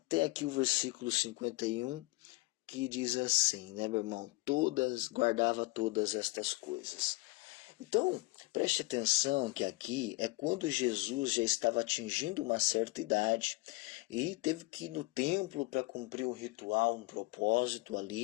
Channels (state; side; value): quieter; right; 22.6 dB